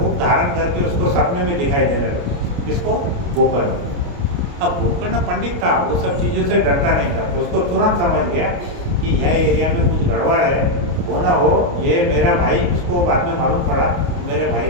धारण करके उसको सपने में दिखाई देने लगे। इसको गोकर्ण। अब गोकर्ण पंडित था, वो सब चीज़ों से डरता नहीं था, तो उसको तुरंत समझ गया कि यह एरिया में कुछ गड़बड़ है, वो ना हो ये मेरा भाई। उसको बाद में मालूम पड़ा मेरे भाई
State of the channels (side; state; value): left; late; 29 ms